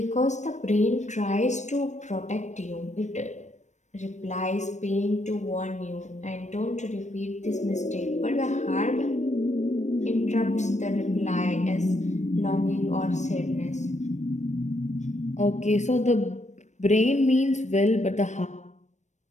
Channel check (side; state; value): right; late; 0.34 ms